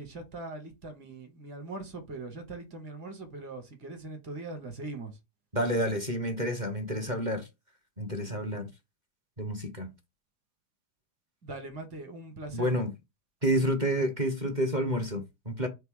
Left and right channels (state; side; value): late; left; 2.1 ms